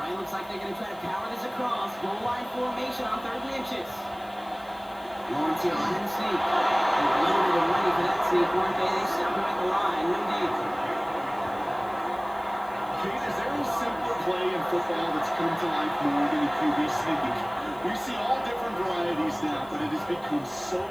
looks like they're going to try to power this across. Goal line formation on 3rd and inches. Lawrence here on the sneak. They were loaded and ready for that sneak, weren't they? They stopped him at the line. No deal. Kate, is there a simpler play in football that's come to life more than a QB sneak? We see all different varieties now, but it has become so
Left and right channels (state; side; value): noise; left; hiss, 25 dB below the sound